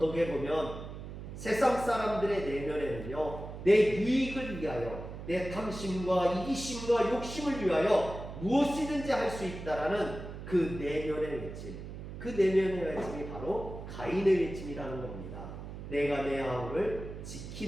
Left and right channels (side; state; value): right; noise; hum, 10 dB below the sound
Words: 보면 세상 사람들의 내면에는요, 내 유익을 위하여, 내 탐심과 이기심과 욕심을 위하여 무엇이든지 할 수 있다라는 그 내면의 외침, 그 내면의 외침이 바로 가인의 외침이라는 겁니다. 내가 내 아우를